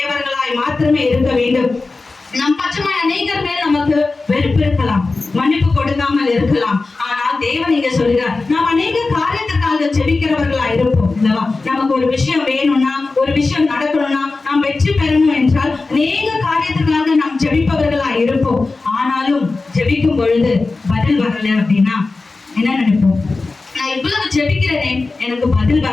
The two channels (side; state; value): right; quieter; 3.7 dB